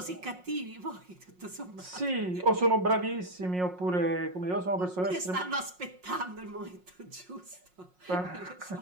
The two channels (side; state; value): left; late; 5.5 ms